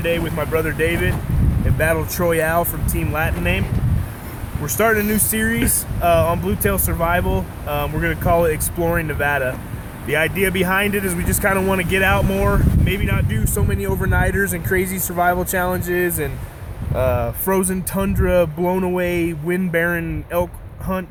with my brother David and Battle Troyale from Team Latin Name. We're starting a new series on Bluetail Survival. We're going to call it Exploring Nevada. The idea behind it is we just kind of want to get out more, maybe not do so many overnighters and crazy survival challenges and frozen tundra, blown away, wind barren elk hunt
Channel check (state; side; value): identical; both; correlation 1.00